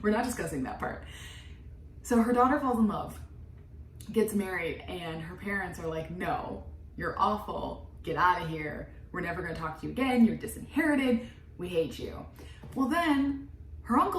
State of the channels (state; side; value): identical; both; correlation 1.00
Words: We're not discussing that part. So her daughter falls in love, gets married, and her parents are like, no, you're awful, get out of here, we're never going to talk to you again, you're disinherited, we hate you. Well, then her